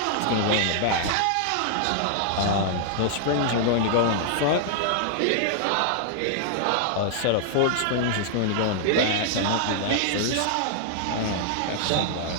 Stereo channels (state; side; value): different; both; correlation -0.01